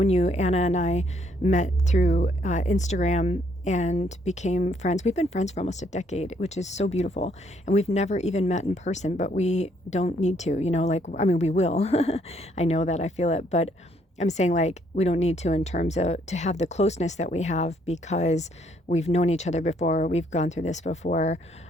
you. Anna and I met through Instagram and became friends. We've been friends for almost a decade, which is so beautiful. And we've never even met in person, but we don't need to, we will. I know that, I feel it, but I'm saying, like, we don't need to in terms of to have the closeness that we have because we've known each other before, we've gone through this before.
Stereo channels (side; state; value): both; normal; correlation 0.69